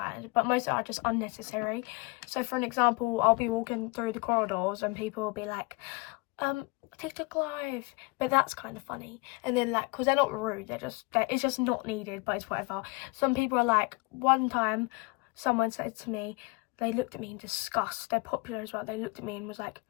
but most are just unnecessary. So for an example, I'll be walking through the corridors and people will be like, TikTok live, but that's kind of funny. And then like, because they're not rude, it's just not needed, but it's whatever. Some people are like, one time someone said to me, they looked at me in disgust, they're popular as well, they looked at me and was like,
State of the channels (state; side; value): quieter; right; 25.9 dB